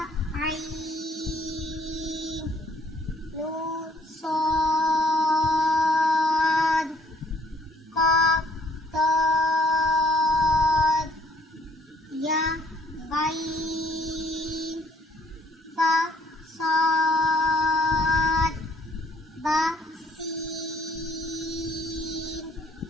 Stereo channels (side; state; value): both; normal; correlation 0.62